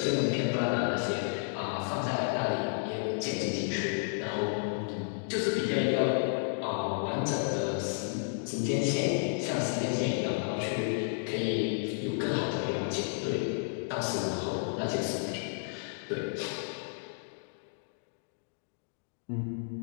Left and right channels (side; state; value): right; silent; digital silence